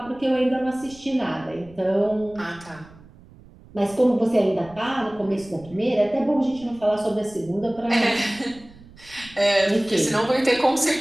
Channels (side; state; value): right; noise; rumble, 23 dB below the sound